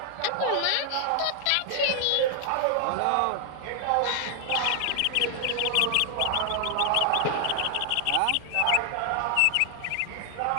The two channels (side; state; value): both; different; correlation 0.00